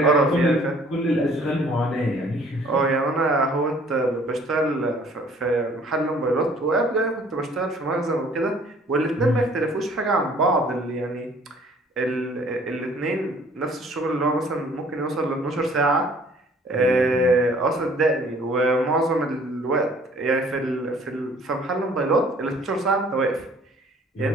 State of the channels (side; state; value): both; normal; correlation 0.55